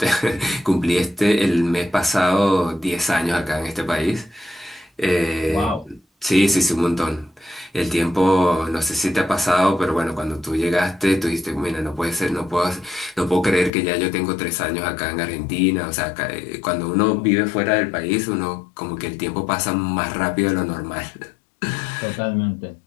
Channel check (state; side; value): drops out; right; at 13.7 s